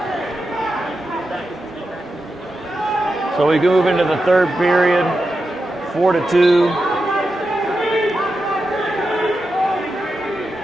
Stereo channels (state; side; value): normal; both; correlation 0.89